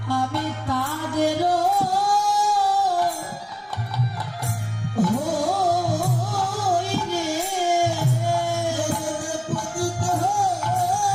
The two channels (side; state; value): both; identical; correlation 1.00